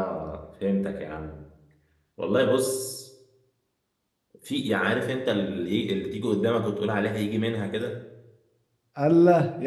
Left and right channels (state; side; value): identical; both; correlation 1.00